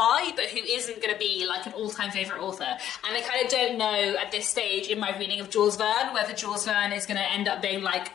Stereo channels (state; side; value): quieter; right; 11.0 dB